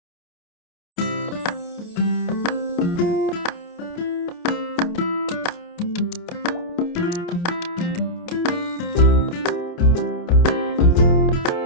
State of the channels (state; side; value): late; right; 28 ms